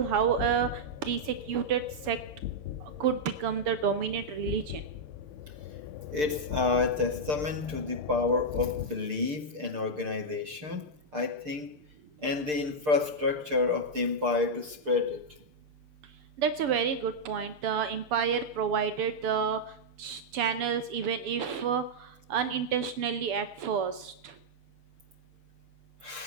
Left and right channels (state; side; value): late; left; 6.7 ms